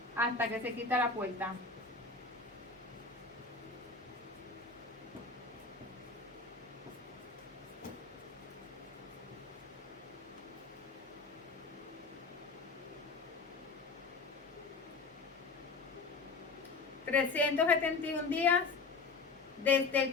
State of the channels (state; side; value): quieter; right; 4.2 dB